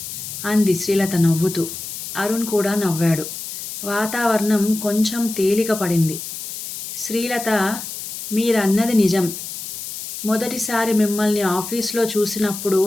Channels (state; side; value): noise; left; hiss, 8 dB below the sound